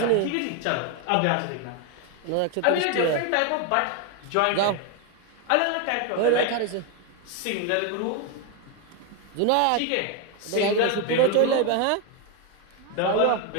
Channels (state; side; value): different; both; correlation 0.01